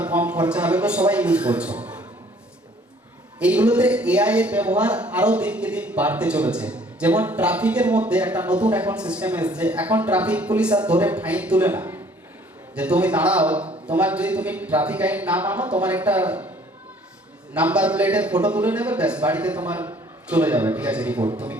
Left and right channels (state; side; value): normal; both; correlation 0.57